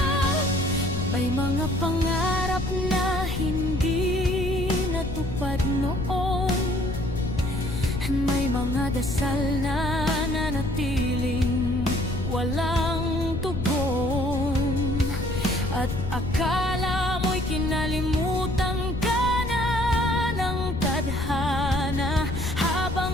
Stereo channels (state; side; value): noise; left; rumble, 5 dB below the sound